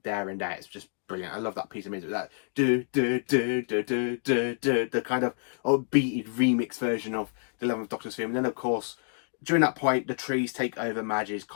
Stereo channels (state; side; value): silent; right; digital silence